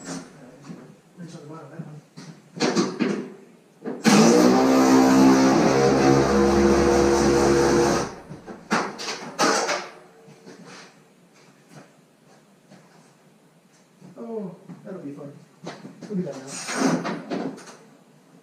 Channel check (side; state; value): both; identical; correlation 1.00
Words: Wrench on the bottom of that one. Oh, that'll be fun. We'll do that now.